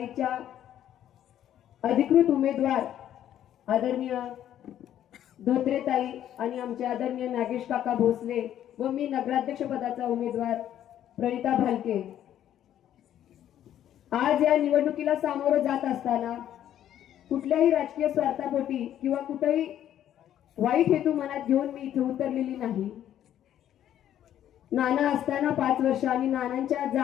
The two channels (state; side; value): quieter; right; 11.1 dB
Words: अधिकृत उमेदवार आदरणीय धोत्रेताई आणि आमचे आदरणीय नागेश काका भोसले व मी नगराध्यक्ष पदाचा उमेदवार प्रणिता भालके आज या निवडणुकीला सामोरं जात असताना कुठल्याही राजकीय स्वार्थापोटी किंवा कुठेही वाईट हेतू मनात घेऊन मी इथे उतरलेली नाही. नाना असताना 5 वर्ष आणि नानांच्या